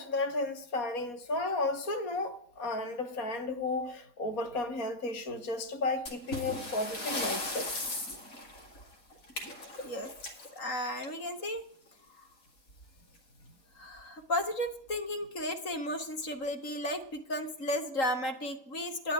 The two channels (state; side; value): late; right; 3.8 ms